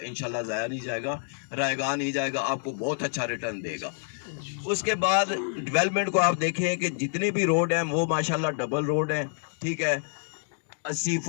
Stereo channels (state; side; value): silent; right; digital silence